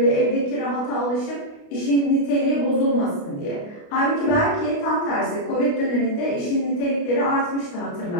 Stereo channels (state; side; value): late; right; 28 ms